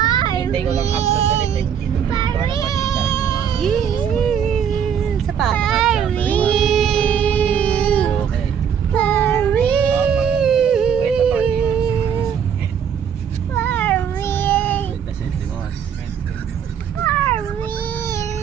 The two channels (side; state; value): left; quieter; 8.1 dB